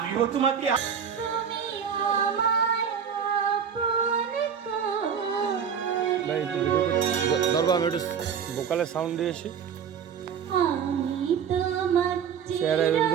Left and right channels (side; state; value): left; quieter; 7.5 dB